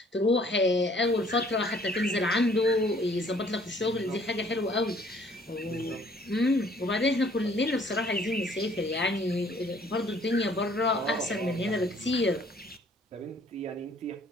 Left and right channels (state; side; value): normal; both; correlation 0.59